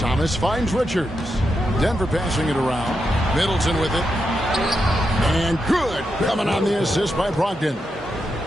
finds Richards. Denver passing it around. Middleton with it. And good. Coming on the assist by Brogdon.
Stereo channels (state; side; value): normal; both; correlation 0.85